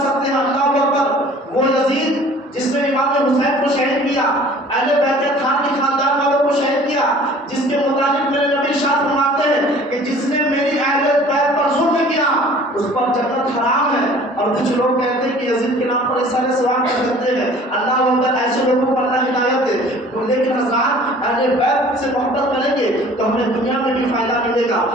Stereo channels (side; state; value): both; normal; correlation 0.49